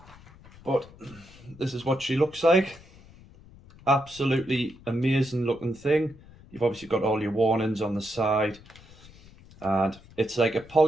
But this is what she looks like. Absolutely amazing looking thing. You've obviously got all your warnings on the side, and it's like a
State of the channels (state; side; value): noise; left; rumble, 23 dB below the sound